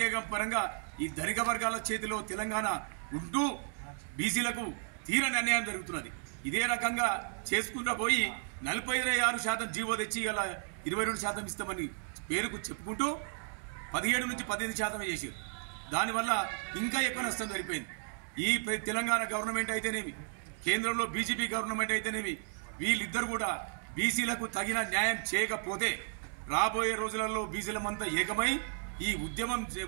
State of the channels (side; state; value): left; silent; 55 dB below the other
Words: పరంగా ఈ ధనిక వర్గాల చేతిలో తెలంగాణ ఉంటూ బీసీలకు తీరని అన్యాయం జరుగుతున్నది. ఇదే రకంగా చేసుకుంటూ పోయి 46% జీవో తెచ్చి ఇలా 22% ఇస్తామని పేరుకు చెప్పుకుంటూ 17 నుంచి 18% చేశారు. దానివల్ల ఇంకా ఎక్కువ నష్టం జరిగిపోయింది. ఈ తెలంగాణ గవర్నమెంట్ అయితేనేమి కేంద్రంలో బీజేపీ గవర్నమెంట్ అయితేనేమి వీళ్ళిద్దరు కూడా బీసీలకు తగిన న్యాయం చేయకపోతే రాబోయే రోజులలో బీసీలమంతా ఏకమై ఈ ఉద్యమం